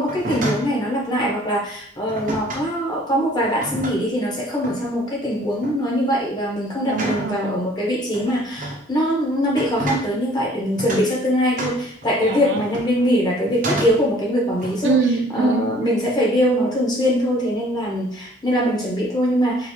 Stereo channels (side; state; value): both; normal; correlation 0.55